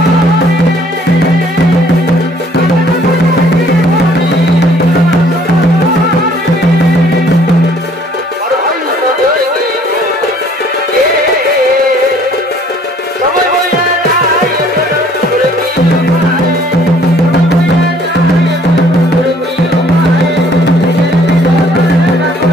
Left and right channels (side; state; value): both; normal; correlation 0.58